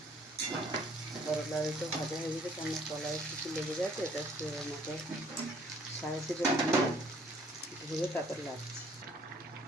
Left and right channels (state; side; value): normal; both; correlation 0.59